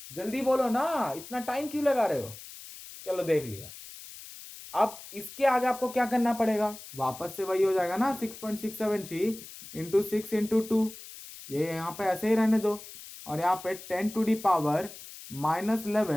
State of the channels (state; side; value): noise; left; hiss, 15 dB below the sound